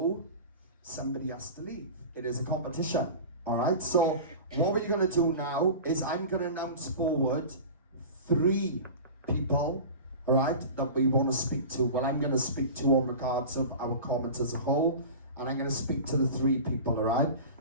somebody has to leave. It is a competition, all right? So what we're going to do now is I'm going to announce forward 3 people, all right, that we want to speak to. Well, I'm going to speak to on regards of our comment as a whole, and I'm going to speak to the 3 people, all right?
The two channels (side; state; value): both; inverted; correlation -0.34